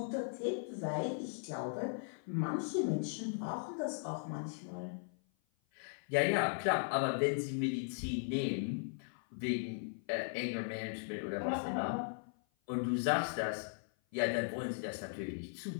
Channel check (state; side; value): silent; right; 52 dB below the other